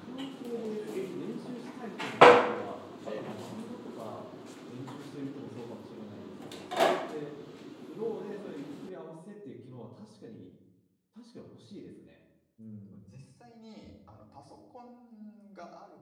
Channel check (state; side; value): identical; both; correlation 1.00